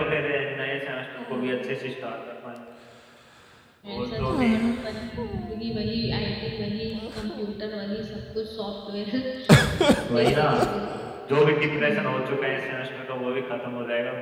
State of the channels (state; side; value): identical; both; correlation 1.00